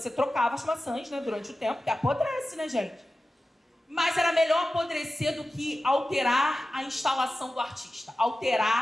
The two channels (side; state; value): both; normal; correlation 0.94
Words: trocava as maçãs, né, durante o tempo, porque apodrece, né, gente? Mas era melhor apodrecer do que alterar a instalação do artista.